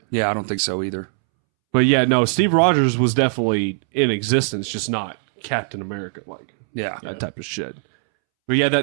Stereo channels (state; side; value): silent; left; 65 dB below the other